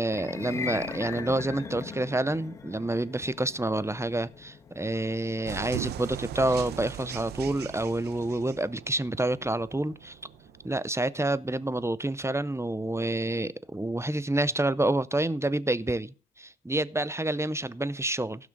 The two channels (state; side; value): normal; both; correlation 0.74